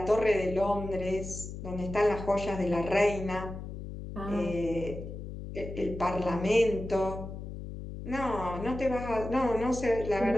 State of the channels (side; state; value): left; noise; hum, 9 dB below the sound